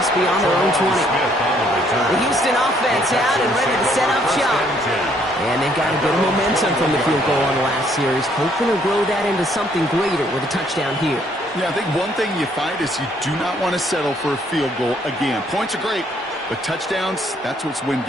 beyond their own 20. The Houston offense out and ready to set up shop. And they've got a bit of momentum from the field goal on the last series, hoping to grow that into something greater with a touchdown here. Yeah, I think one thing you find is you do not want to settle for a field goal again. Points are great, but touchdowns, that's what's win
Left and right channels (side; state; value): both; normal; correlation 0.66